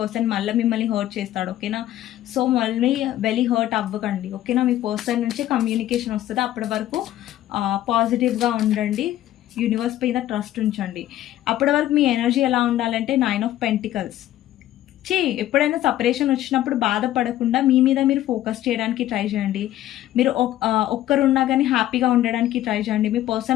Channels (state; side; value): quieter; right; 13.5 dB